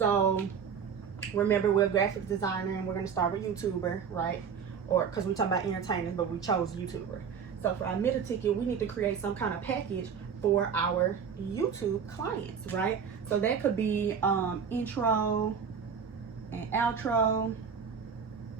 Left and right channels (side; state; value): left; quieter; 6.8 dB